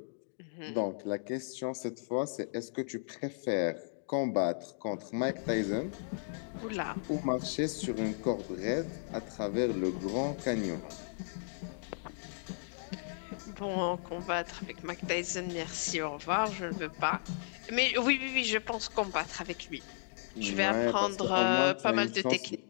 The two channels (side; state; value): right; silent; digital silence